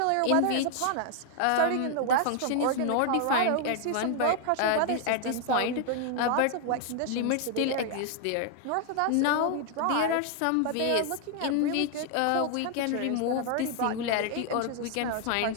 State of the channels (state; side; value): different; both; correlation 0.00